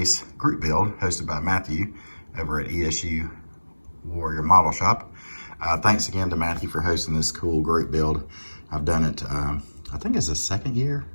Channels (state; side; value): inverted; both; correlation -1.00